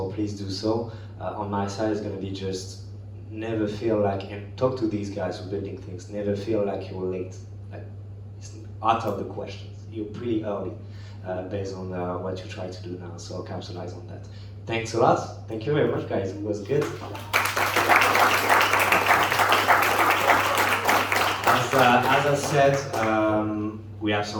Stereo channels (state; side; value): identical; both; correlation 1.00